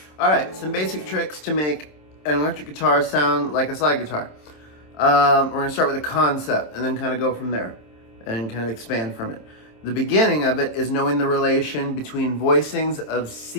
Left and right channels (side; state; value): right; late; 27 ms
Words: All right, some basic tricks to make an electric guitar sound like a slide guitar. We're gonna start with a concept and then kind of go from there and kind of expand from it. The beginning of it is knowing the relation between voicings of